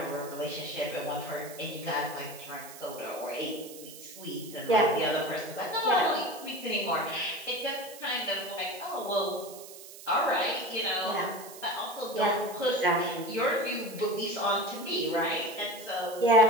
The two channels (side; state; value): right; noise; hiss, 15 dB below the sound